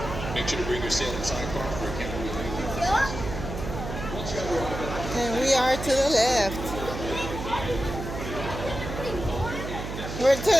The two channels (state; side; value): noise; right; hum, 7 dB below the sound